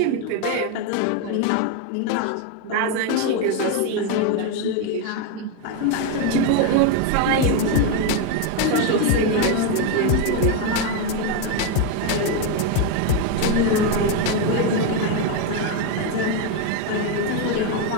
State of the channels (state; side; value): different; both; correlation 0.02